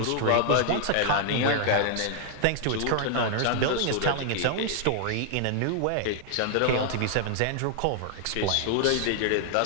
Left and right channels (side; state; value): both; different; correlation 0.00